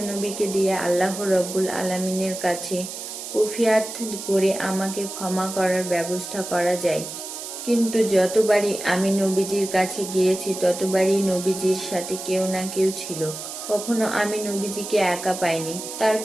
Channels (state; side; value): noise; right; hiss, 9 dB below the sound